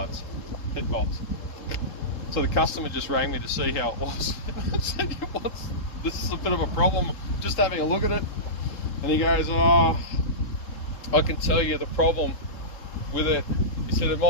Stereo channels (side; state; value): right; late; 3.7 ms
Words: head bolts. So the customer just rang me to see how it was. I said, this is a bit of a problem. Just having a look at it. And he goes, oh, I can tell you the problem with it. He said, it